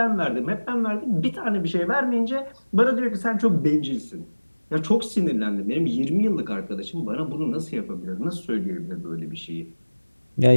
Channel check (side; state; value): both; inverted; correlation -1.00